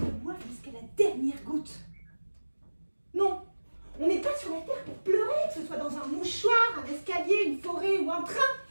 le boivent jusqu'à la dernière goutte. Non, on n'est pas sur la terre pour pleurer, que ce soit dans un mouchoir, un escalier, une forêt ou un train.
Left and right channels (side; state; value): both; inverted; correlation -1.00